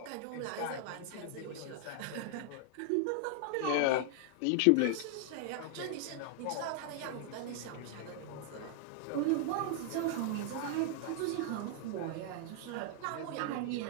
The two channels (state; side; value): different; both; correlation -0.01